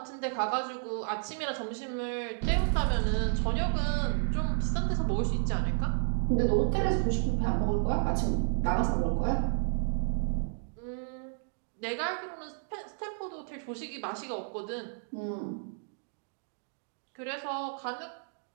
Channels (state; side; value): silent; left; digital silence